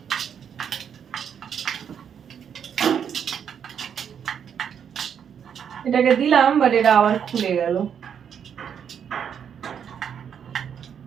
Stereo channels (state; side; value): quieter; left; 8.0 dB